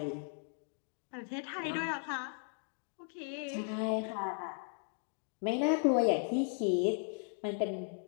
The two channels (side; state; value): right; silent; 53 dB below the other